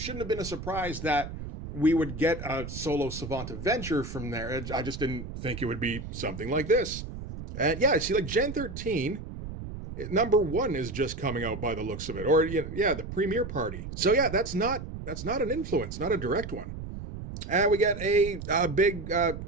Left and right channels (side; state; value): right; noise; rumble, 9 dB below the sound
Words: have been a surprise that we would get a solo Savant adventure from there. I just didn't think it would be something like this. And yeah, see, like Gen 13, number 1 is just coming out by the looks of it. Or, the premiere party. So yeah, that's not an influence, not a direct one. And we get a big